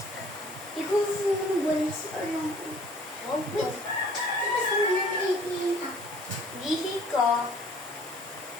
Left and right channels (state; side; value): normal; both; correlation 0.53